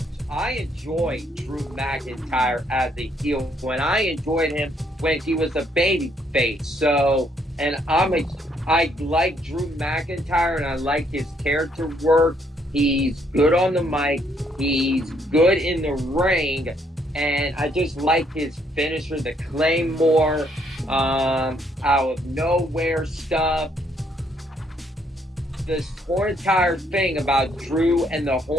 Drew McIntyre as a heel when I enjoyed him when he was a baby face. So, and I like Drew McIntyre and I like his character work. He's good on the mic. He's good in the ring. And I just like his finisher, the Claymore, out of nowhere stuff. This whole entire thing about Drew and the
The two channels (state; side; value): normal; both; correlation 0.70